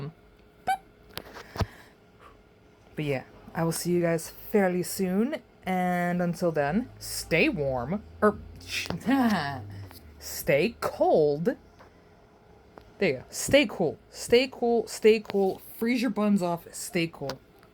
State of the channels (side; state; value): both; identical; correlation 1.00